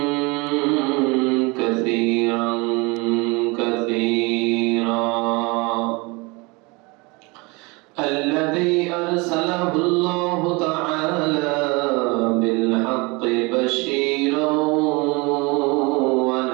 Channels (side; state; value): left; quieter; 26.7 dB